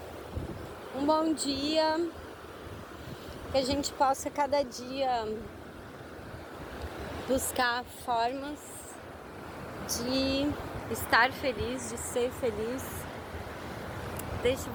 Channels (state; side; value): identical; both; correlation 1.00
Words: Um bom dia. Que a gente possa cada dia buscar formas de estar feliz, de ser feliz. Deixo